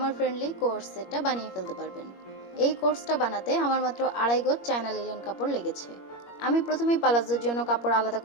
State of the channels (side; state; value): right; late; 21 ms